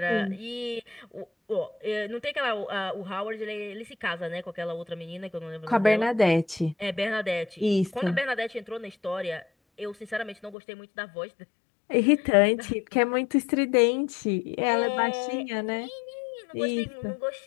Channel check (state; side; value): drops out; right; at 10.6 s